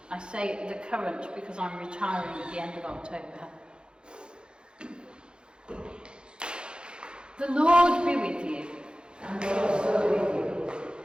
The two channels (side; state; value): left; late; 0.050 ms